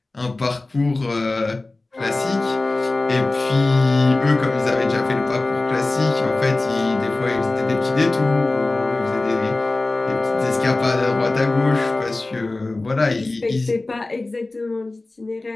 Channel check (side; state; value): right; quieter; 3.1 dB